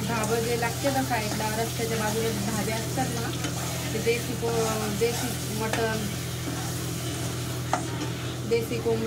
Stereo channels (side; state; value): both; identical; correlation 1.00